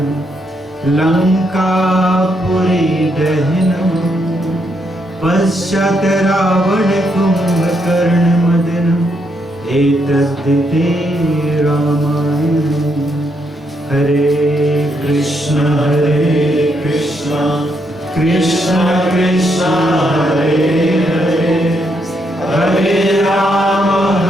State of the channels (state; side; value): normal; both; correlation 0.77